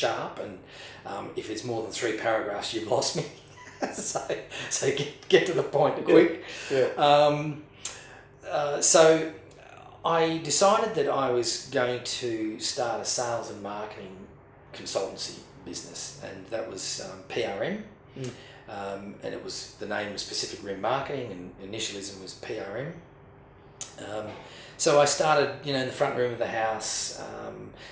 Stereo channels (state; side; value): identical; both; correlation 1.00